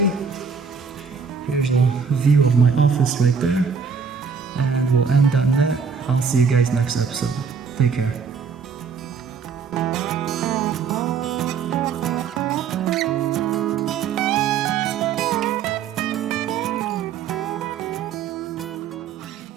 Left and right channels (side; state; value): left; quieter; 6.1 dB